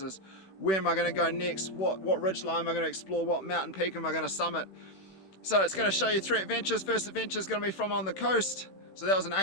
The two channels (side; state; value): right; late; 16 ms